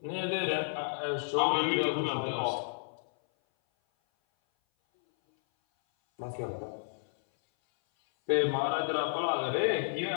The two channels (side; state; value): right; silent; 57 dB below the other